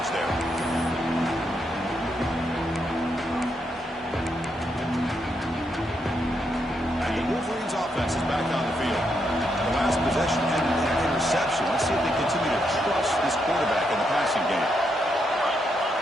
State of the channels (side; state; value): both; normal; correlation 0.80